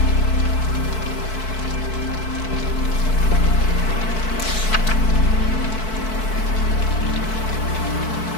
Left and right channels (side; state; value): right; late; 4.6 ms